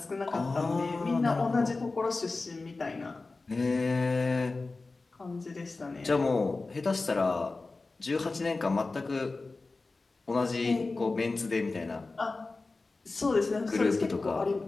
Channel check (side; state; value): right; quieter; 3.6 dB